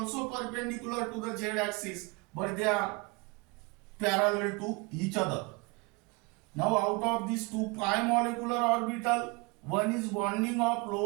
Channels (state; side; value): quieter; left; 27.5 dB